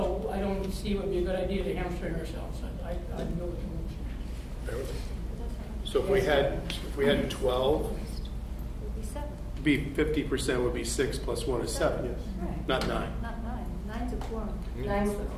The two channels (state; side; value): identical; both; correlation 1.00